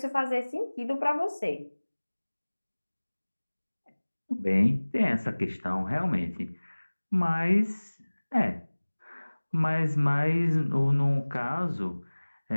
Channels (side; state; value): both; inverted; correlation -1.00